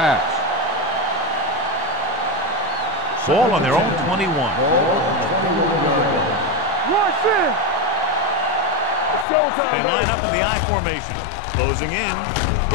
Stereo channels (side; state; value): right; drops out; at 9.2 s